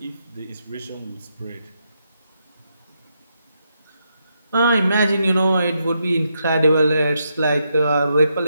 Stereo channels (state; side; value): inverted; both; correlation -0.81